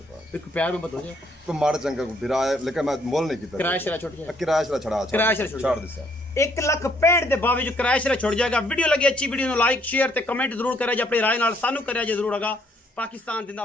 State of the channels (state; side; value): normal; both; correlation 0.67